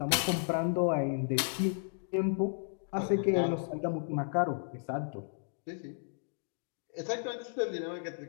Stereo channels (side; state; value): right; silent; digital silence